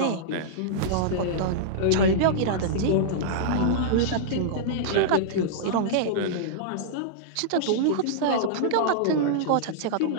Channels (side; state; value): both; different; correlation -0.02